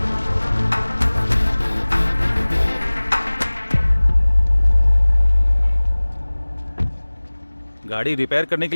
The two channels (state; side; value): inverted; both; correlation -1.00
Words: गाड़ी रिपेयर करने के